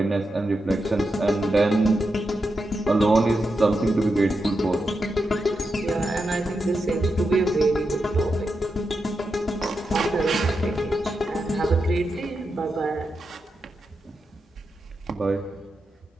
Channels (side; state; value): both; normal; correlation 0.87